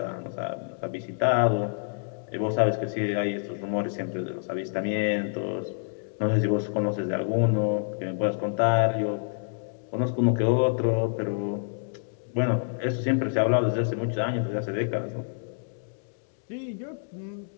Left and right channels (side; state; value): right; silent; digital silence